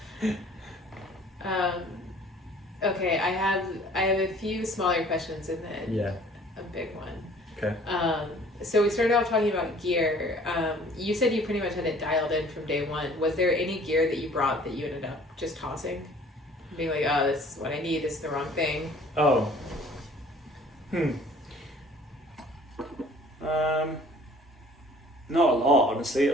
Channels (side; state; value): both; normal; correlation 0.53